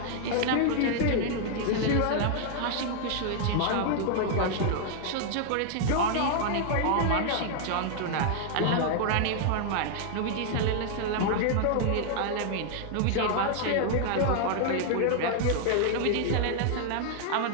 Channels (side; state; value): both; different; correlation 0.00